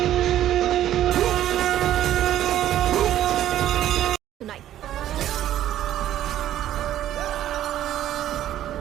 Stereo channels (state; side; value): quieter; left; 12.2 dB